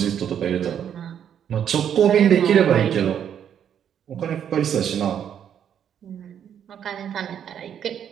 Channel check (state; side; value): quieter; left; 9.0 dB